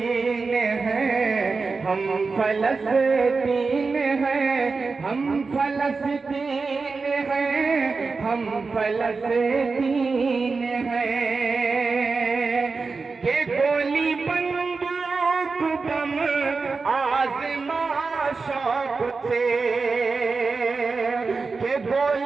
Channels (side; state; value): left; quieter; 4.3 dB